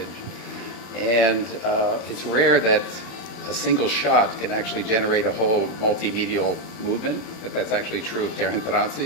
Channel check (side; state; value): right; late; 33 ms